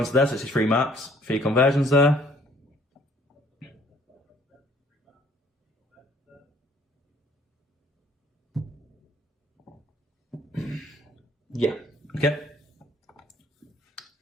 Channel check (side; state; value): both; normal; correlation 0.60